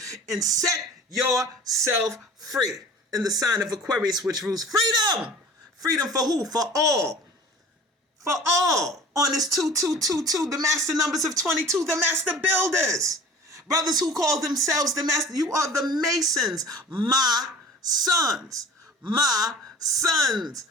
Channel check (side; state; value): both; normal; correlation 0.43